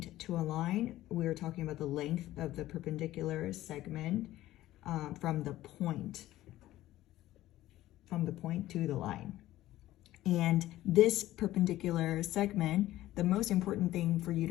to a line, we are talking about the length of the perpendicular segment from the point to the line. And this perpendicular segment, the most important thing for you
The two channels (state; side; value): quieter; right; 15.2 dB